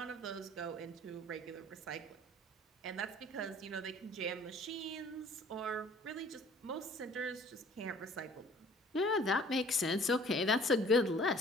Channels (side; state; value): both; normal; correlation 0.52